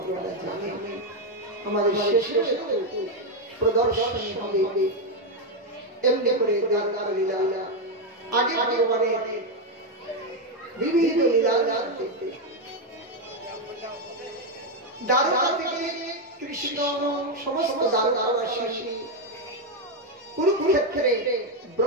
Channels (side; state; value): both; normal; correlation 0.04